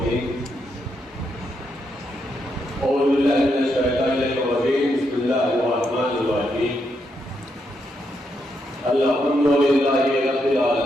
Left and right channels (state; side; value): normal; both; correlation 0.80